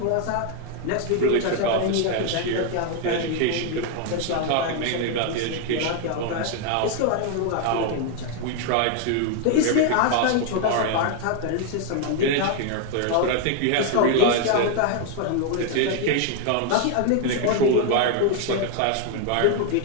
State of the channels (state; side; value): different; both; correlation 0.00